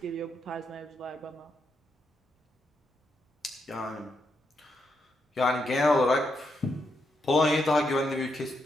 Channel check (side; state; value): both; normal; correlation 0.81